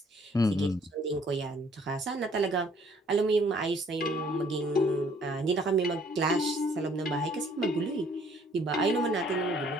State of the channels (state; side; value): normal; both; correlation 0.61